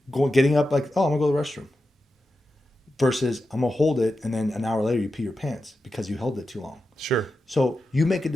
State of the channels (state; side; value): normal; both; correlation 0.90